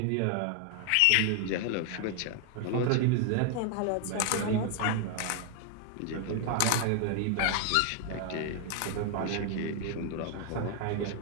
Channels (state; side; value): different; both; correlation 0.00